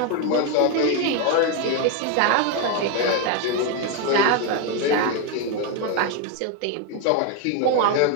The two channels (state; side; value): different; both; correlation 0.02